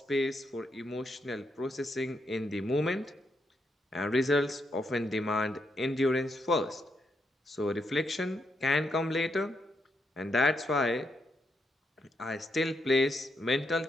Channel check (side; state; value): both; normal; correlation 0.80